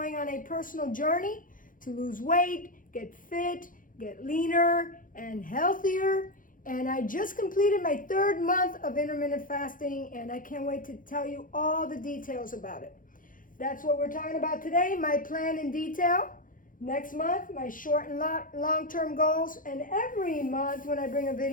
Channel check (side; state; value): right; late; 0.39 ms